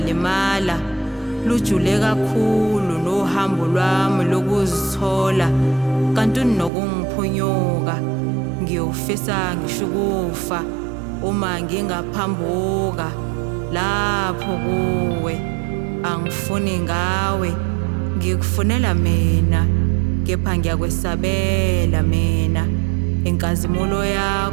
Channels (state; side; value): drops out; left; at 6.7 s